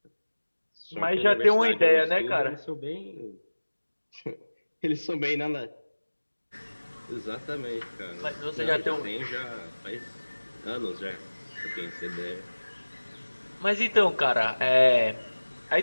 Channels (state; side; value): inverted; both; correlation -1.00